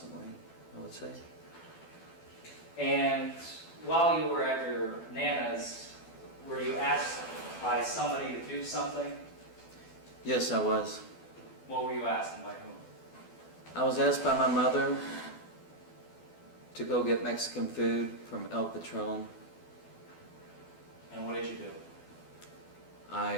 I would say. And while you were at your Nana's, were you asked by somebody to do something? Yes, I was. What were you asked and by whom? I was asked by my mother to go get Mexican food from El Patron. And what did you do?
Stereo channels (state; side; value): late; right; 12 ms